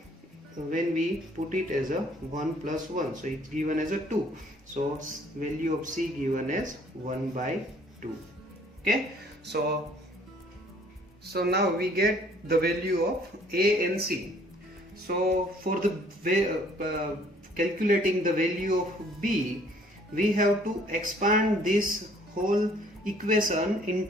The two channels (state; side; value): normal; both; correlation 0.58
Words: when we put it as 1 plus 1, so it's given as 2, so value of c given as 1 by 2. Okay, so now we get the value of a and c. So for the calculating the value of b, we have to expand this whole equation in